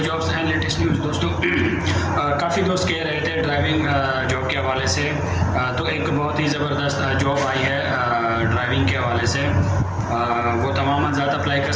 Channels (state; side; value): identical; both; correlation 1.00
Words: and latest news. दोस्तों काफ़ी दोस्त कह रहे थे ड्राइविंग जॉब के हवाले से, तो एक बहुत ही ज़बरदस्त जॉब आई है ड्राइविंग के हवाले से। वो तमाम ज़्यादा अप्लाई कर